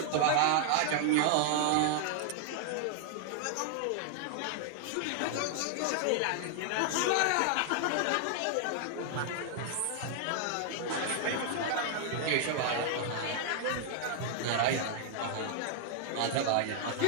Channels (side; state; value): both; different; correlation 0.00